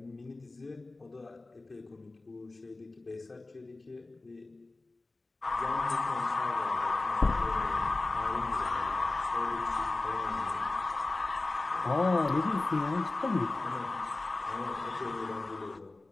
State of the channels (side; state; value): right; quieter; 3.2 dB